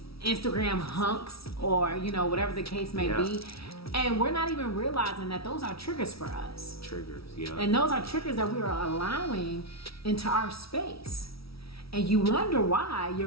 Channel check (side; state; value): right; late; 0.76 ms